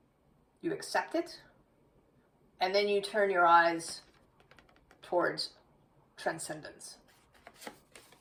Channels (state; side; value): identical; both; correlation 1.00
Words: You accept it. And then you turn your eyes towards transcendence.